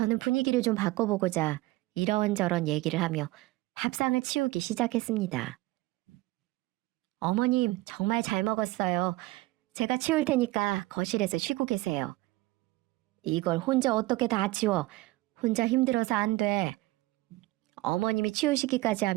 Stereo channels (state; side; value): quieter; left; 19.5 dB